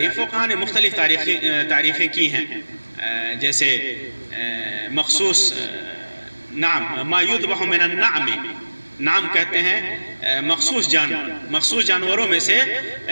فقہاء نے مختلف تعریفیں کی ہیں، جیسے مخصوص نعم، ما یذبح من النعم، نعم کہتے ہیں مخصوص جانور، مخصوص جانوروں میں سے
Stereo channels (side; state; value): both; inverted; correlation -1.00